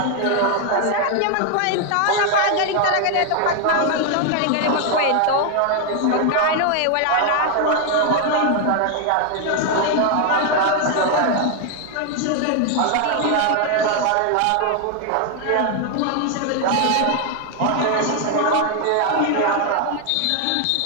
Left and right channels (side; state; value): both; different; correlation 0.00